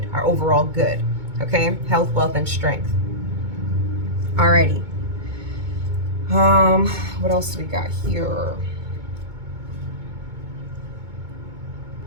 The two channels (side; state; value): left; late; 2.2 ms